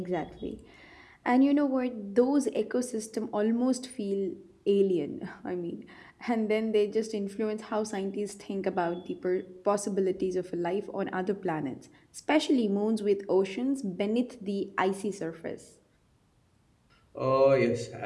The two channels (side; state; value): both; identical; correlation 1.00